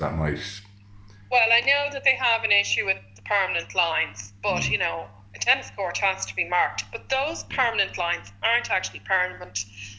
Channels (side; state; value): both; identical; correlation 1.00